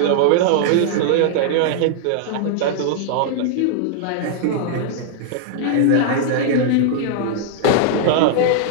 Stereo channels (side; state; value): both; different; correlation -0.01